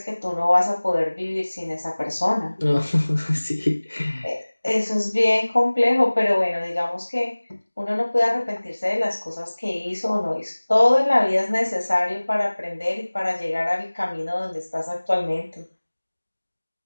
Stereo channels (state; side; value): inverted; both; correlation -1.00